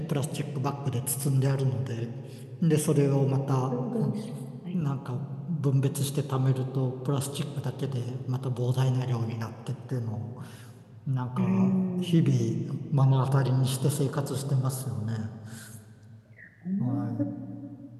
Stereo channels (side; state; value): both; identical; correlation 1.00